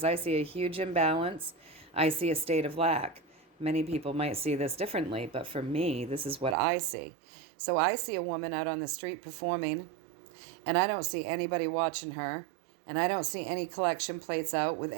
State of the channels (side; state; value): left; drops out; at 6.6 s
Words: I see a huge imbalance. I see a state of lack. Many people might see this differently, but for me, this is what I see. So I see a woman out on the street performing, and I don't see anybody watching her, and I don't see any collection plates out with